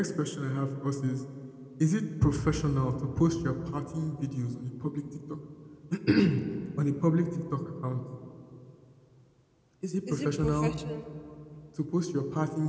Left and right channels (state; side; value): identical; both; correlation 1.00